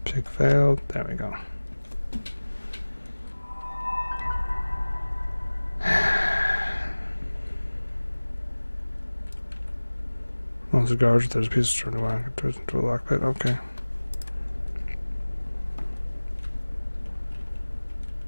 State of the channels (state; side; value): inverted; both; correlation -1.00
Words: Pick failed. There we go. Well, cigars. There's a piece of string wire. Twist into a lockpick. Okay.